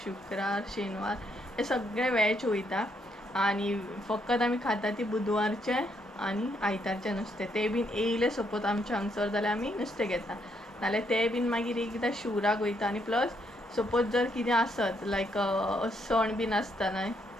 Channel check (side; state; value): both; normal; correlation 0.74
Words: शुक्रार शेनवार हे सगळे वॅज वयता. आनी फकत आमी खाता ती बुधवारचें आनी आयतारचें नुस्तें. तें बीन येयलें सपोज आमच्या हांगसर जाल्यार आमी नुस्तें घेता. नाल्यार तें बीन मागीर एकदां शिवराक वयता. आनी प्लस सपोज जर कितें आसत लायक सण बीन आसता न्हय